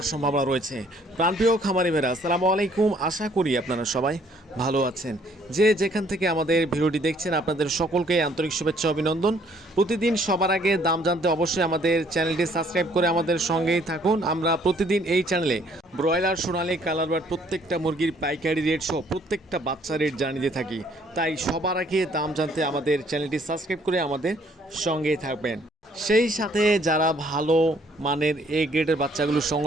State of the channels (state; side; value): normal; both; correlation 0.62